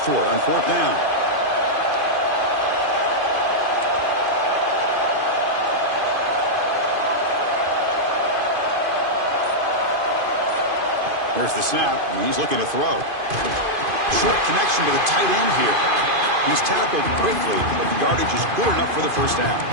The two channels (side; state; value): left; late; 2.5 ms